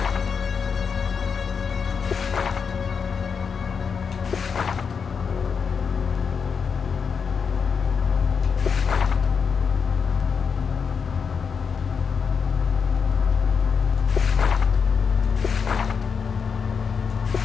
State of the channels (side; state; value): right; quieter; 6.1 dB